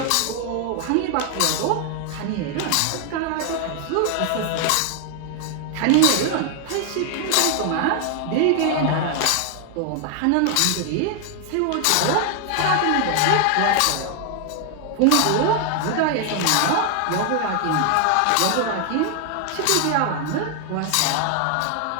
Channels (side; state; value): both; different; correlation 0.00